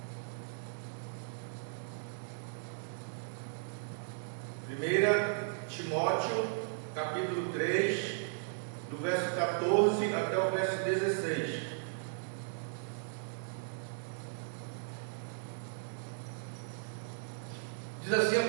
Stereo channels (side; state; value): left; silent; digital silence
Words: Timóteo, capítulo 3, do verso 14 até o verso 16. Diz assim a